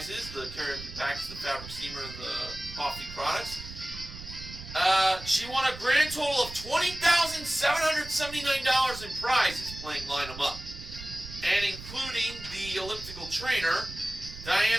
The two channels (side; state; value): right; noise; rumble, 13 dB below the sound